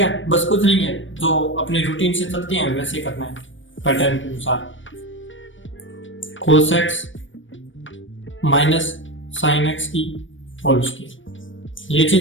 बस कुछ नहीं है, जो अपने रूटीन से चलते हैं वैसे करना है, पैटर्न के अनुसार। cos x minus sin x की होल स्क्वायर, ये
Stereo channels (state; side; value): late; right; 0.56 ms